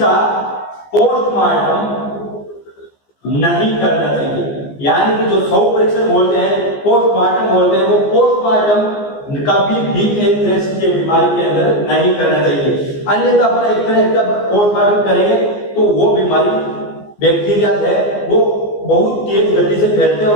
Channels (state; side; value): late; right; 14 ms